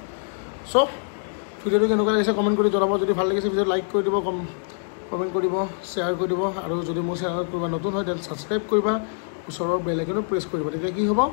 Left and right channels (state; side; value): silent; right; digital silence